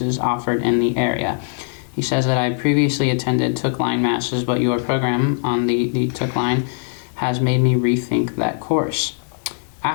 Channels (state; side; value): silent; right; 64 dB below the other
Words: offered in the area. He says that I previously attended Took Line Masses, but your program on the Took Line has made me rethink that course.